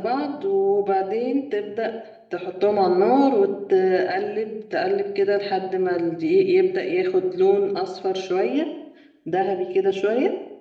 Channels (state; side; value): identical; both; correlation 1.00